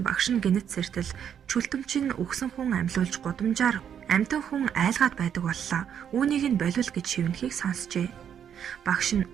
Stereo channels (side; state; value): left; quieter; 8.6 dB